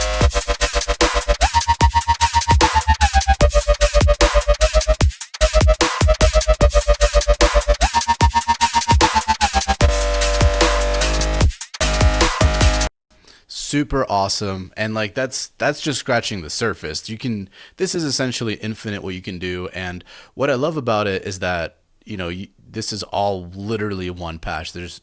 Super awesome, and like that's just scratching the surface. This is essentially infinite what you can do, and what I love about it is that this is all literally one patch. There's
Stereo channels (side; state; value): both; identical; correlation 1.00